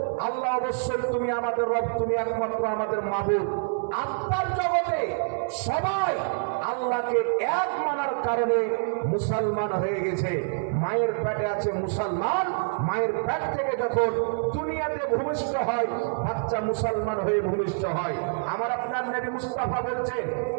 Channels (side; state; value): left; silent; 60 dB below the other